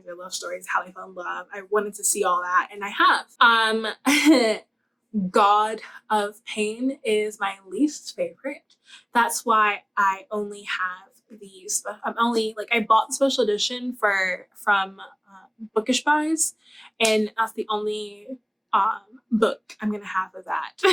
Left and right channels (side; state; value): both; identical; correlation 1.00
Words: their love stories, how they fell in love. I wanted to see all that, and I have. God of Pain is my least favorite. That's why I only have these. I bought the special edition from Bookish Buys, and that's the only book I'm gonna have of that.